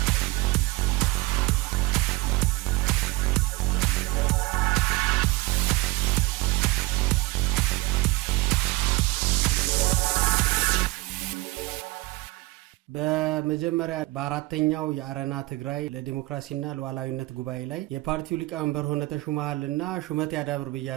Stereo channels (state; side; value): quieter; left; 21.8 dB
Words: በመጀመሪያ በአራተኛው የአረና ትግራይ ለዲሞክራሲና ለሉዓላዊነት ጉባኤ ላይ የፓርቲው ሊቀመንበር ሆነ ተሹመሃልና ሹመት ያዳብር